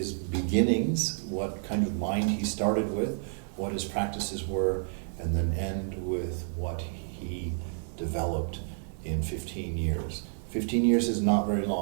beginnings, what kind of mind he started with, what his practices were, and then end with what he developed in 15 years. 15 years is not very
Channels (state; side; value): silent; left; 58 dB below the other